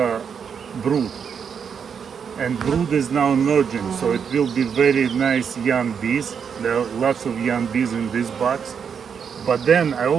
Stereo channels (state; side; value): quieter; left; 6.9 dB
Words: brood, and brood is now emerging. So it will be very nice young bees. There are lots of young bees in this box. But then I